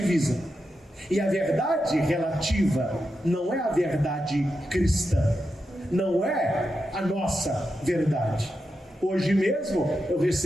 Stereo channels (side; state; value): both; normal; correlation 0.87